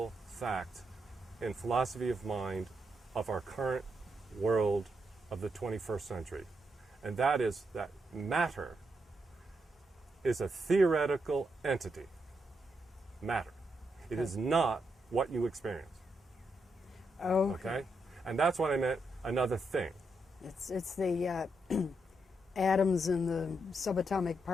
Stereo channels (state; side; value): normal; both; correlation 0.81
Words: fact in philosophy of mind of our current world of the 21st century. And that is that matter is a theoretical entity. Matter. It is not what you experience. Okay? And that's what I meant, another thing. It's the atoms and the subatomic